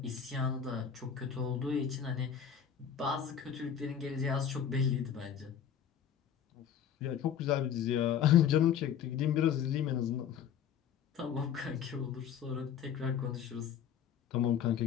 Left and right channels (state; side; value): quieter; right; 8.4 dB